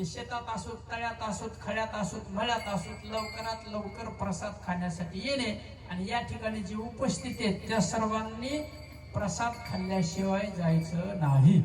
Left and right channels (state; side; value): identical; both; correlation 1.00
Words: शेतात असोत, तळ्यात असोत, खड्यात असोत, मळ्यात असोत, लवकरात लवकर प्रसाद खाण्यासाठी येणे. आणि या ठिकाणी जी उपस्थित आहेत त्या सर्वांनी प्रसाद खाल्ल्याशिवाय जायचं नाही.